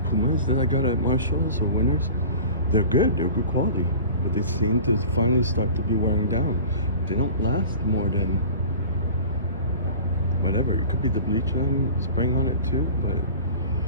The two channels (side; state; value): both; inverted; correlation -0.39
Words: Pumas that I got at Marshalls or Winners, they're good quality, but they seem to finally start to be wearing down. They don't last more than whatever. It could be the bleach I'm spraying on it too, but